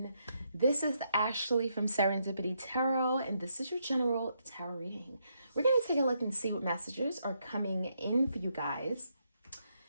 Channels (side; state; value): both; inverted; correlation -0.78